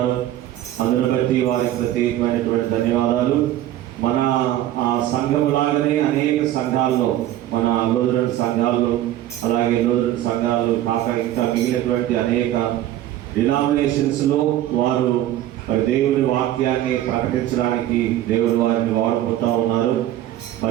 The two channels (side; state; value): left; quieter; 13.2 dB